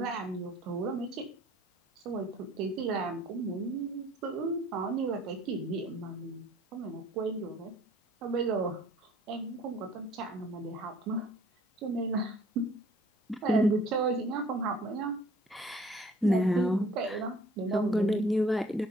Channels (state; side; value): normal; both; correlation 0.55